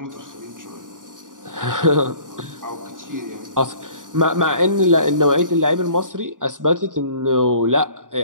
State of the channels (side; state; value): left; late; 0.88 ms